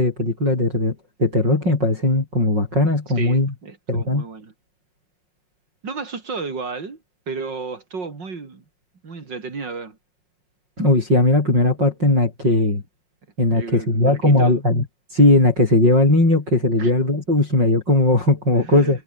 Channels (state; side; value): late; left; 5.5 ms